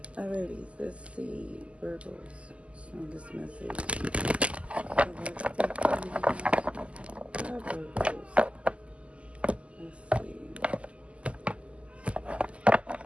Alrighty, let's see Virgos. Strongest message. Hi Virgos. Let's see.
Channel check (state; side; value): late; left; 0.059 ms